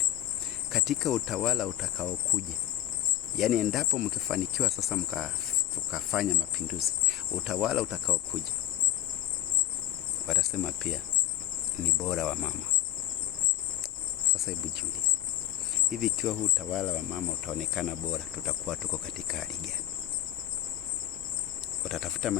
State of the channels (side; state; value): right; quieter; 12.4 dB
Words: Katika utawala utakaokuja, yani endapo mkifanikiwa sasa tukafanya mapinduzi, utawala utakaokuja watasema pia ni bora wa mama. Sasa hebu jiulize, hivi ikiwa huu utawala wa mama utaonekana bora, tutakuwa tuko katika hali gani? Watatafuta